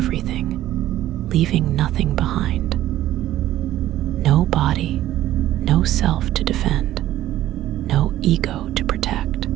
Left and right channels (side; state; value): left; quieter; 13.7 dB